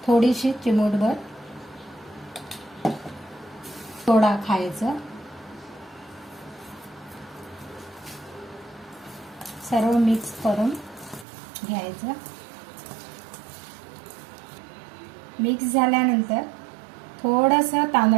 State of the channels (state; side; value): drops out; left; at 11.2 s